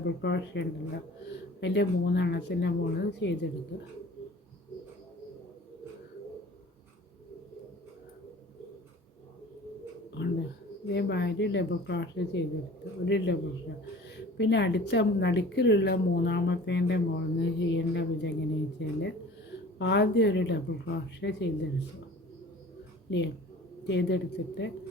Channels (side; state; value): both; normal; correlation 0.44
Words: ക്രോഷ്യ ഉണ്ടല്ലോ അതിൻ്റെ 3 എണ്ണത്തിൻ്റെ മുകളിൽ ചെയ്തെടുക്കുക. ഇതേമാതിരി ഡബിൾ ക്രോഷ്യ ചെയ്തെടുത്ത് ഒരു ഡബിൾ ക്രോഷ്യ. പിന്നെ അടുത്ത നടുക്കിലുള്ള 3ാമത്തേൻ്റെ മുകളിൽ നിന്ന് ചെയ്യേണ്ട വിധം എങ്ങനെയാണെന്ന് വെച്ചാൽ ആദ്യം ഒരു ഡബിൾ ക്രോഷ്യ ചെയ്തെടുക്കുക. ചെയ്തെടുത്തിട്ട്